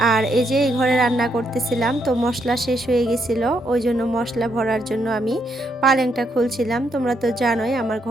আর এই যে এই ঘরে রান্না করতেছিলাম, তো মশলা শেষ হয়ে গেছিল, ওই জন্য মশলা ভরার জন্য আমি পালেংটা খুলছিলাম। তোমরা তো জানোই আমার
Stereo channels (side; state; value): both; normal; correlation 0.76